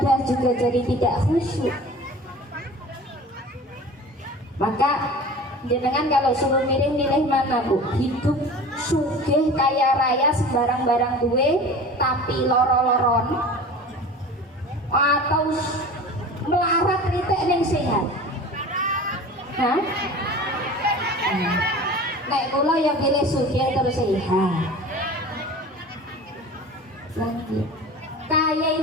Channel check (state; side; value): normal; both; correlation 0.38